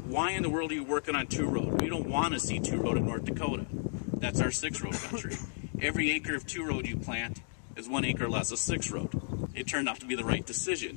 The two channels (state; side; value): silent; right; digital silence